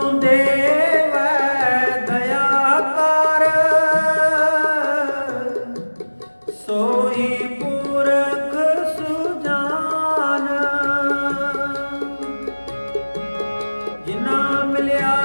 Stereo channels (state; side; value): inverted; both; correlation -1.00